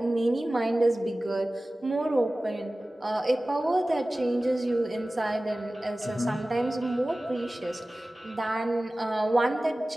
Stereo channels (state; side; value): normal; both; correlation 0.97